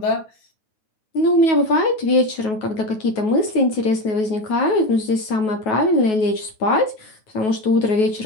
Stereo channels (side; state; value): right; late; 9.3 ms